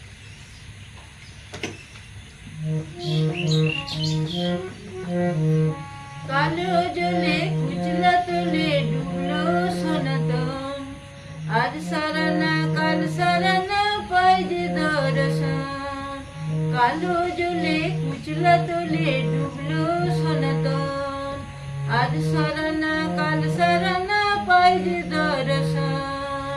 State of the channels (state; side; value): identical; both; correlation 1.00